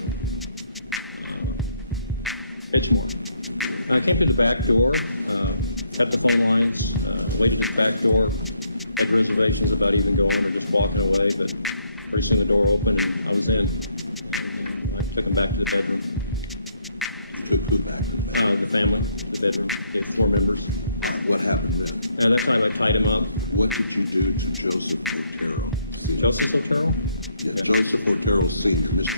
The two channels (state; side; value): inverted; both; correlation -0.71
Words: Edgemore. I came to the back door, cut the phone lines, waited at the back door, had reservations about even going or just walking away, but pretty soon the door opened and I was in. And I took him back to the bedroom. You took who back to the bedroom? The family, to the bedroom, the 4 members. All right, what happened then? At that time I tied him up. What did you do to Joseph Otero Sr.? Joseph Otero? Yeah, Joseph Otero Sr.,